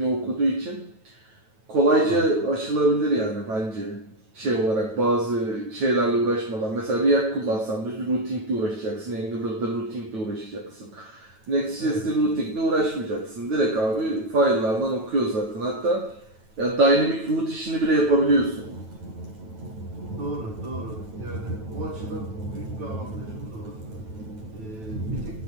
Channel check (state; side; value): late; left; 9.2 ms